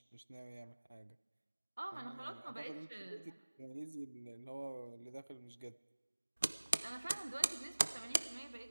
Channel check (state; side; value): inverted; both; correlation -1.00